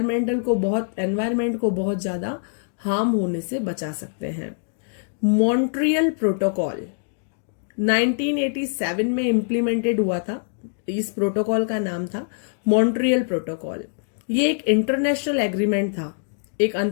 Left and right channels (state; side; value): silent; right; digital silence